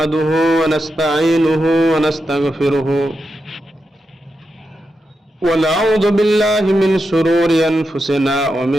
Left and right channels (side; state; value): both; normal; correlation 0.87